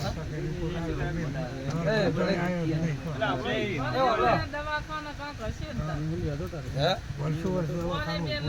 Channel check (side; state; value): both; identical; correlation 1.00